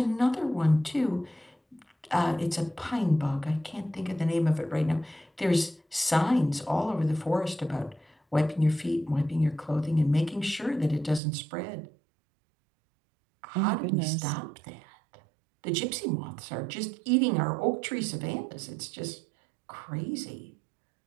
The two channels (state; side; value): drops out; left; at 11.2 s